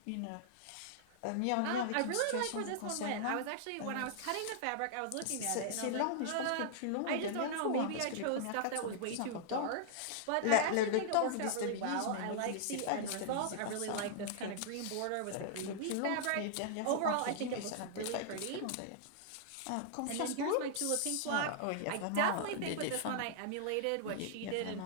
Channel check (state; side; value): different; both; correlation -0.01